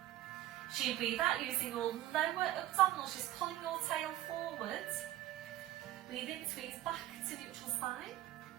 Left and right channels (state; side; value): quieter; left; 14.7 dB